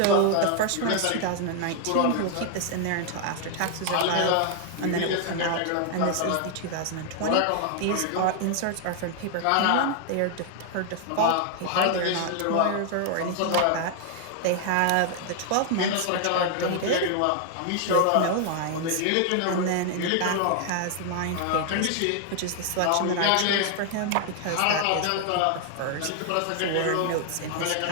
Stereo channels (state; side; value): different; both; correlation 0.00